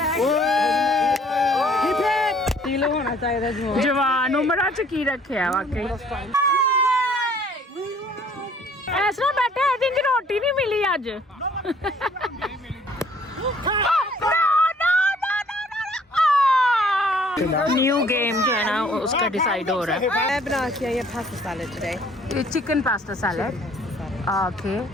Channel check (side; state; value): both; normal; correlation 0.58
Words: होना चाहिए जवान उम्र च की रखे है वाकई ऐसा बैठे आई थिंक रोटी नहीं मिली आज न्यू गेम जो है ना उसका डिसाइड हो रहा है मैं बना के आई pasta salad today chicken pasta salad okay